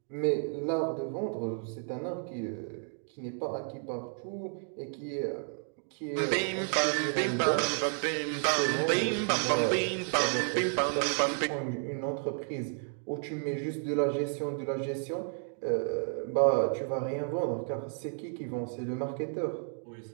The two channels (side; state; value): left; silent; 57 dB below the other